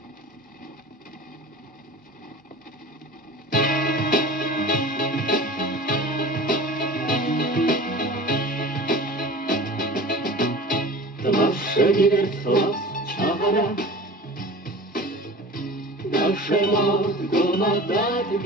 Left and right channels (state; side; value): normal; both; correlation 0.38